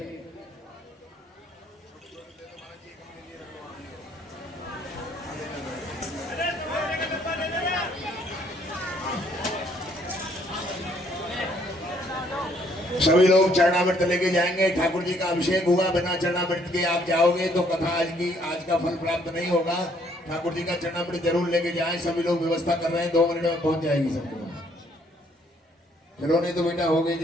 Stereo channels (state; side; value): normal; both; correlation 0.66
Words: सभी लोग चरणामृत लेके जाएंगे। ठाकुर जी का अभिषेक हुआ, बिना चरणामृत के आप जाओगे तो कथा आज का फल प्राप्त नहीं होगा। ठाकुर जी का चरणामृत जरूर लेके जाएं। सभी लोग व्यवस्था कर रहे हैं, 2 मिनट में पहुंच जाएगी सबको। चलो नहीं तो बेटा हो गई,